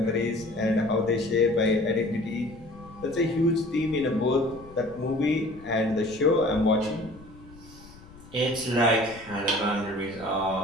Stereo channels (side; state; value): left; noise; rumble, 21 dB below the sound